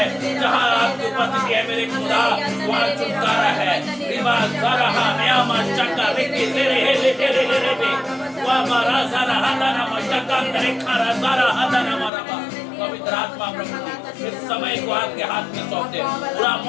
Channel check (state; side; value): drops out; right; at 12.1 s